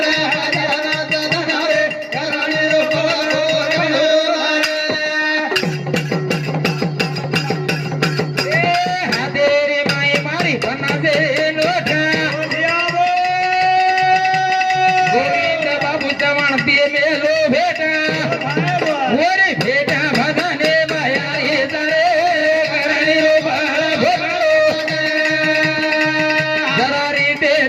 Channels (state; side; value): identical; both; correlation 1.00